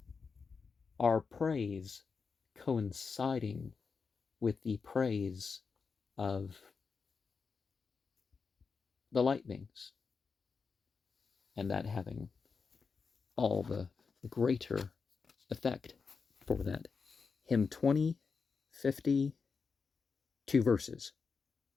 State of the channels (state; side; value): quieter; right; 5.2 dB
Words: our praise coinciding with the praise of the light beings, and that having all the greater effect for that. Hymn 20:50, 2 verses.